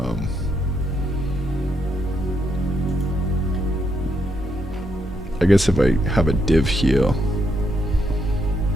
I guess if I have a div here,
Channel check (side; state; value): both; normal; correlation 0.78